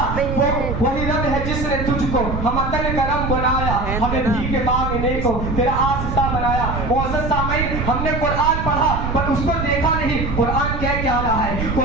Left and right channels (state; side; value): noise; right; rumble, 3 dB below the sound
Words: وہی رب ہے جس نے تجھ کو ہم عطن کرم بنایا، ہمیں بھیگ مانگنے کو تیرا آستا بنایا۔ معزز سامعین، ہم نے قرآن پڑھا پر اس کو دیکھا نہیں، قرآن کہہ کیا رہا ہے۔